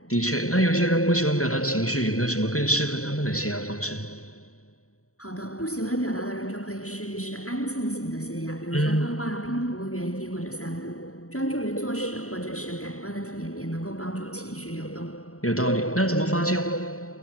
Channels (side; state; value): right; late; 0.64 ms